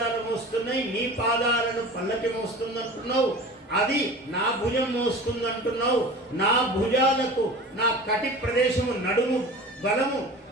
మోస్తున్నాయి, నీ పాదాలను పల్లకి మోస్తుందంటున్నావు. అది నా భుజం మోస్తుందంటున్నావు. నా భుజాలకు నా కటి ప్రదేశము నడుము బలము,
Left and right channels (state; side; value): normal; both; correlation 0.37